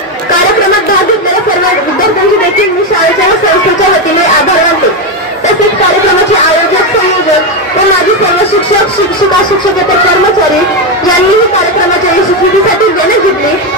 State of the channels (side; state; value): both; normal; correlation 0.10